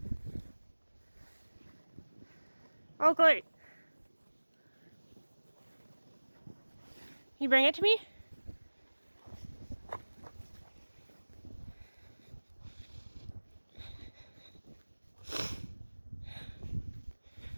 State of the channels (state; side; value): inverted; both; correlation -1.00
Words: Oakley. You bring it to me?